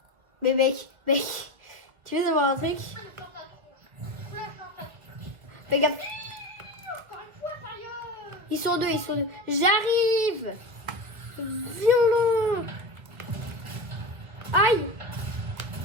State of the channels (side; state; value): left; late; 2.0 ms